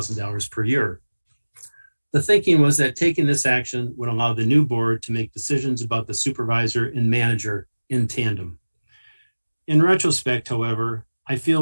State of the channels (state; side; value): inverted; both; correlation -1.00